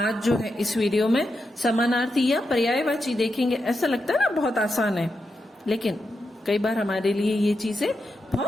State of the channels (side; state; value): both; normal; correlation 0.86